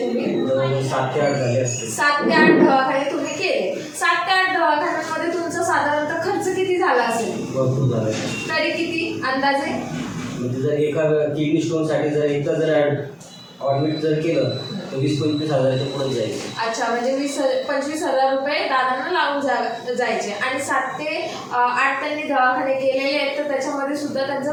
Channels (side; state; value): both; identical; correlation 1.00